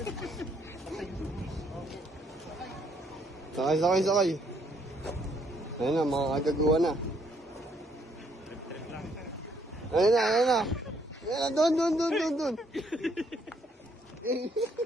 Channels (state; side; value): normal; both; correlation 0.69